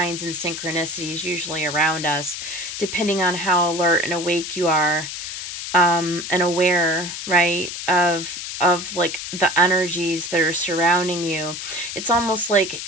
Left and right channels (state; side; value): noise; left; hiss, 7 dB below the sound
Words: and synchronicities usually around us, depending on how alert and awake you are. and aware, right, of like the energies that are surrounding you. It's almost like